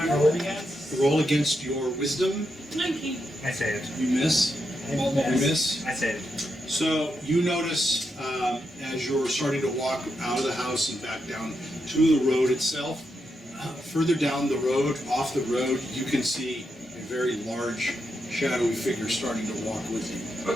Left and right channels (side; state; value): both; normal; correlation 0.84